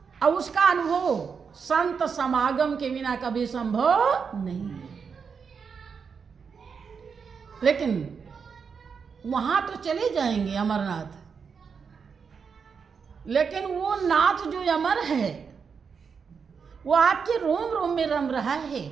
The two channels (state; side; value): quieter; left; 6.0 dB